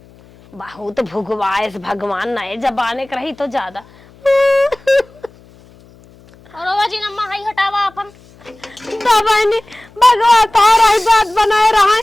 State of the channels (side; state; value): left; noise; hum, 26 dB below the sound